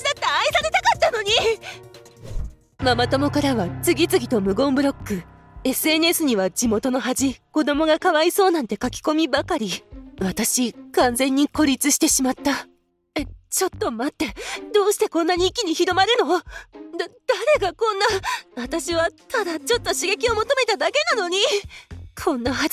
だって愛されたかったのに。ママ友からは次々と無言ブロック。SNS には地元の恥、子供がかわいそうなんて書き込みばかり。私、完全に孤立してしまった。ちょっと待って。どうしてこんなに一気に広まるの？誰がこんな。私はただちょっと刺激を求めただけなのに。こんなは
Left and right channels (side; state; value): both; identical; correlation 1.00